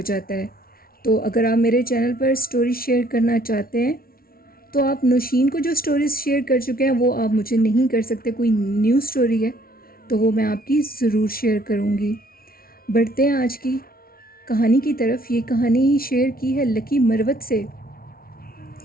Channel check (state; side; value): late; right; 0.43 ms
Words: جاتا ہے۔ تو اگر آپ میرے چینل پر سٹوری شیئر کرنا چاہتے ہیں تو آپ نوشین کو جو سٹوریز شیئر کر چکے ہیں وہ آپ مجھے نہیں کر سکتے۔ کوئی نیو سٹوری ہے تو وہ میں آپ کی ضرور شیئر کروں گی۔ بڑھتے ہیں آج کی کہانی کی طرف۔ یہ کہانی شیئر کی ہے لکی مروت سے،